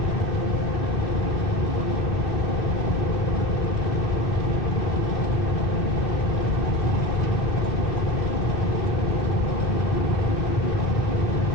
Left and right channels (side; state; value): right; noise; hum, 14 dB below the sound